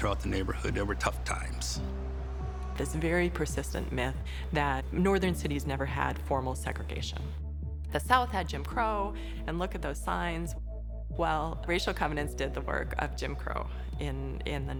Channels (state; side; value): identical; both; correlation 1.00